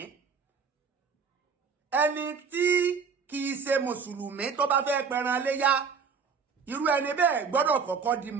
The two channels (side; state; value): left; quieter; 5.7 dB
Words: ẹni tí kìí ṣe mùsùlùmí tó bá fẹ́ pẹran léyá irú ẹni bẹ́ẹ̀ gbọ́dọ̀ kọ́kọ́ di